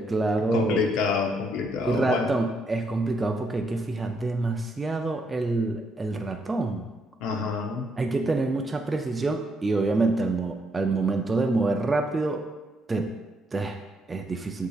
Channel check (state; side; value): normal; both; correlation 0.75